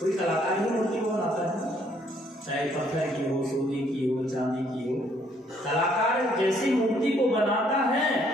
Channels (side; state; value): both; normal; correlation 0.66